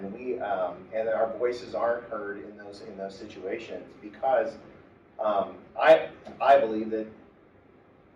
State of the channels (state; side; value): identical; both; correlation 1.00